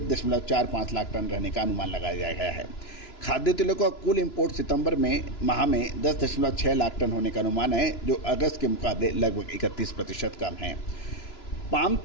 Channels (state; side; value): late; right; 2.9 ms